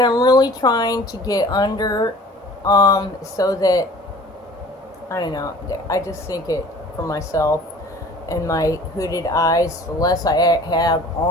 I'm really trying to get under, so that, I don't know, I just think it, for myself and my hooded eyes, the less I have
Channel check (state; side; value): normal; both; correlation 0.47